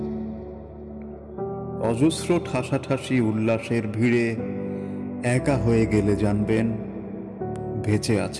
অজস্র ঠাসাঠাসি উল্লাসের ভিড়ে একা হয়ে গেলে জানবেন বেঁচে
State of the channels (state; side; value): identical; both; correlation 1.00